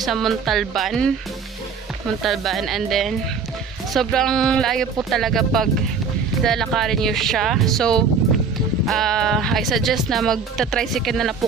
Montalban and then sobrang layo po talaga pag lalakarin nyo siya. So I suggest na magta-tricycle na lang po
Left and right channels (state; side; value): quieter; left; 5.4 dB